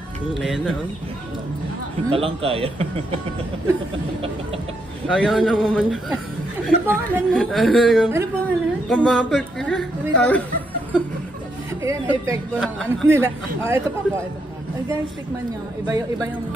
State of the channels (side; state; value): both; normal; correlation 0.78